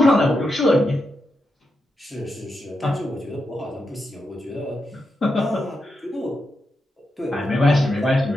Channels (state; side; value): normal; both; correlation 0.86